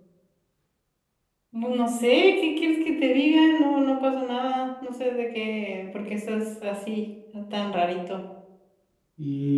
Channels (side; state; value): both; identical; correlation 1.00